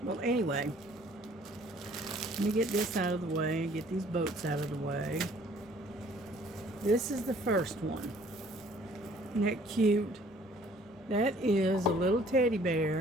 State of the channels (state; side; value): normal; both; correlation 0.57